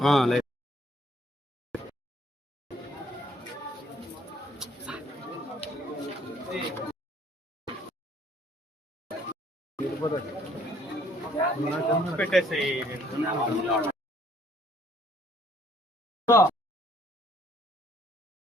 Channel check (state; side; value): normal; both; correlation 0.62